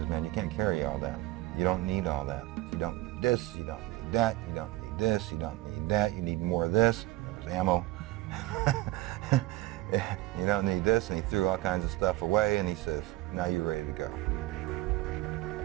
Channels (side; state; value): left; quieter; 17.3 dB